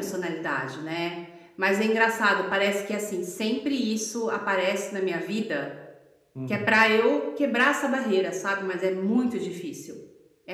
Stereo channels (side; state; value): both; identical; correlation 1.00